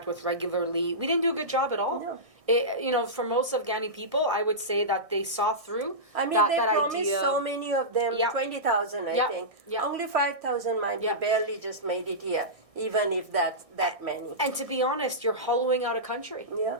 with regularly. We didn't do a good job at all. No. For most Afghani people, I would say that they saw through I mean, that promised idea. so many of them, 20,000, I think. Only 5,000, mind you, barely just made it here, even if that's that many. And to be honest, you're hollowing out a country. Yeah.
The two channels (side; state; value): left; late; 1.6 ms